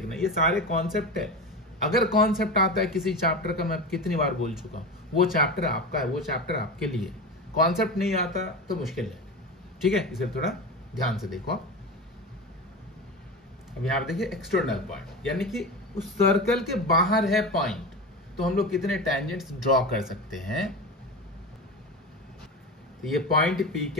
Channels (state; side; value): normal; both; correlation 0.25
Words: ये सारे कॉन्सेप्ट है। अगर कॉन्सेप्ट आता है किसी चैप्टर का, मैं कितनी बार बोल चुका हूं, वो चैप्टर आपका है, वो चैप्टर आपके लिए। कॉन्सेप्ट नहीं आता तो मुश्किल है। ठीक है, इसे थोड़ा ध्यान से देखो। अब यहां पर देखिए एक्सटर्नल पॉइंट, यानी कि उस सर्कल के बाहर है पॉइंट, तो हम लोग कितने टैंजेंट्स ड्रॉ कर सकते हैं। तो ये पॉइंट पी